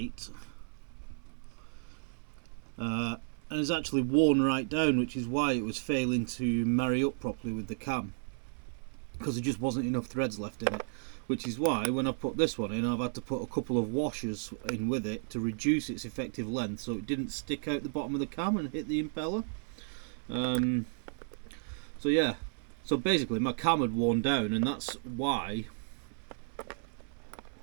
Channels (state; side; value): silent; left; 56 dB below the other